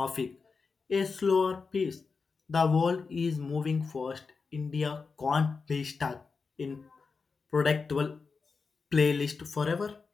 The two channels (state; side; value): quieter; right; 4.8 dB